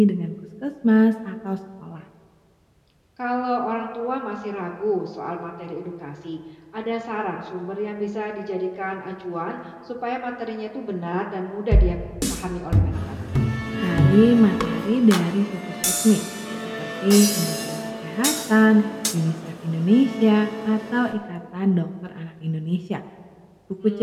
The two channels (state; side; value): identical; both; correlation 1.00